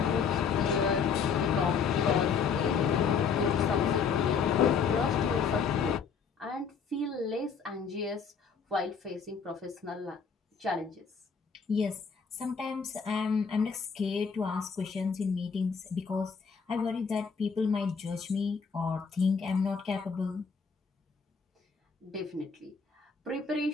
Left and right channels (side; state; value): right; quieter; 5.9 dB